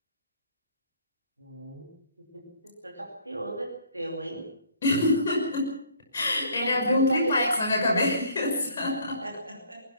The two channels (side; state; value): both; inverted; correlation -0.58